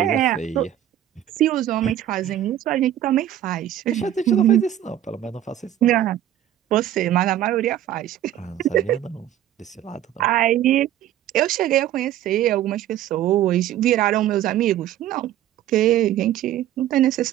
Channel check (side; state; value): left; quieter; 12.0 dB